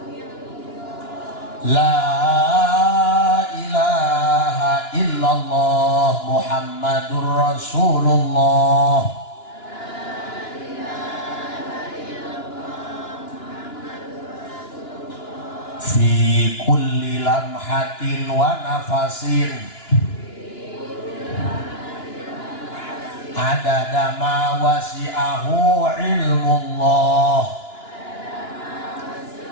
la ilaha illallah Muhammadur Rasulullah fi kulli lamhatin wa nafasin adada ma wasi'ahu ilmullah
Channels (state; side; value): late; right; 2.9 ms